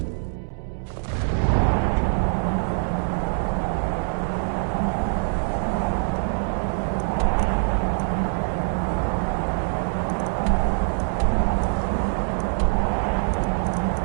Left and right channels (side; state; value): left; silent; digital silence